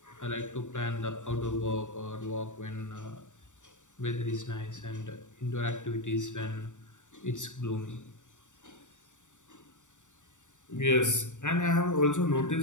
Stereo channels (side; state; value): right; late; 0.85 ms